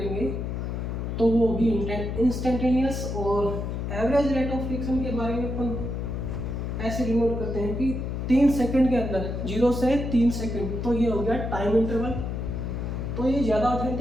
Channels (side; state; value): left; noise; hum, 3 dB below the sound